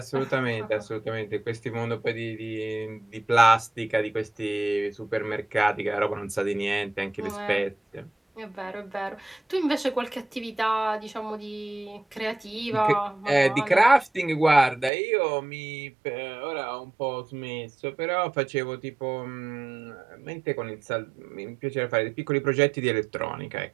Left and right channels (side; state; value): left; drops out; at 14.9 s